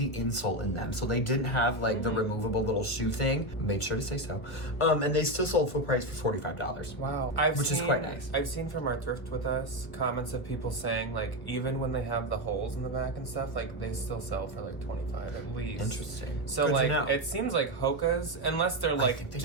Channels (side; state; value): right; late; 1.5 ms